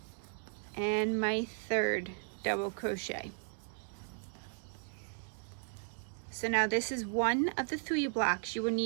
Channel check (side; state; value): left; silent; digital silence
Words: and my 3rd double crochet. So now this is 1 of the 3 blocks you will